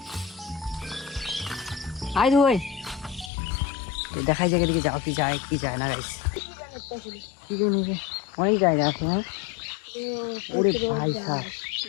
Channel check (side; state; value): right; drops out; at 3.3 s